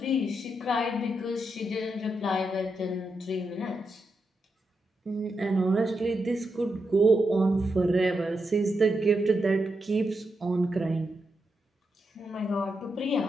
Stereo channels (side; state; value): both; normal; correlation 0.85